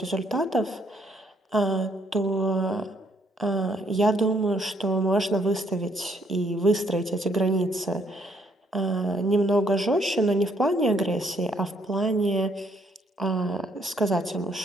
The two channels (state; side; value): normal; both; correlation 0.69